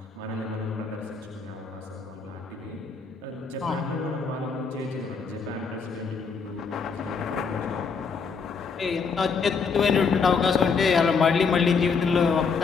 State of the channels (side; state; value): right; quieter; 5.3 dB